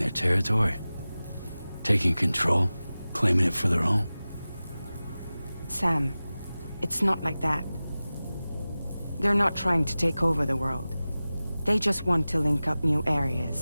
territory? Taking control? Claiming it for their own? Sam, it's not like that. They're not trying to take over the world. They just want to link up new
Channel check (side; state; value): both; inverted; correlation -0.97